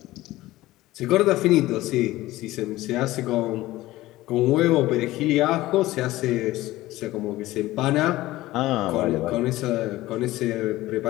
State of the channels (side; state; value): right; quieter; 17.2 dB